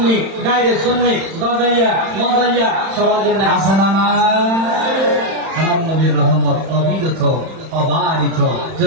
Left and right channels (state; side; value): late; left; 31 ms